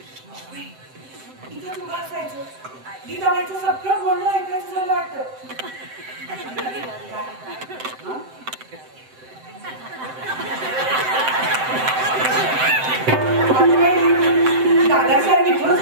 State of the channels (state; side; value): late; left; 7.7 ms